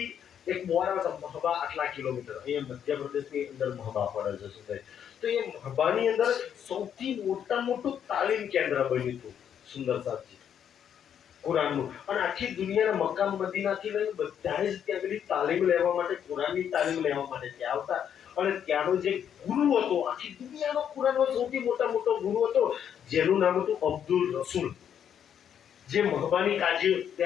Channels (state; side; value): quieter; right; 8.8 dB